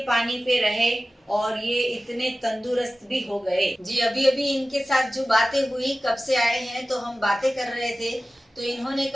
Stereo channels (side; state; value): both; normal; correlation 0.95